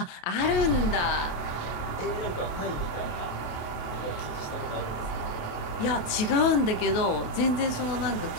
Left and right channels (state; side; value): late; right; 28 ms